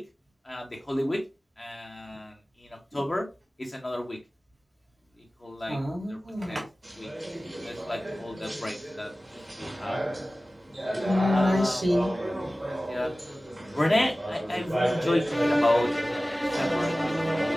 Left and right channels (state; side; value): normal; both; correlation 0.97